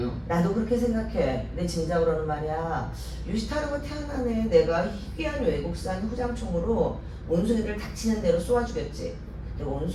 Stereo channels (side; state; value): both; identical; correlation 1.00